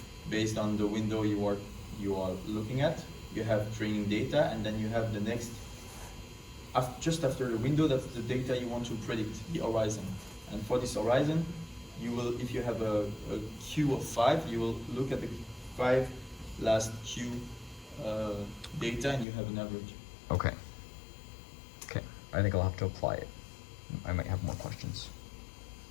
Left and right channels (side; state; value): right; drops out; at 19.2 s